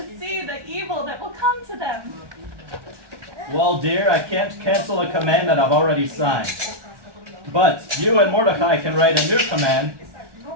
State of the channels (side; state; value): left; late; 1.2 ms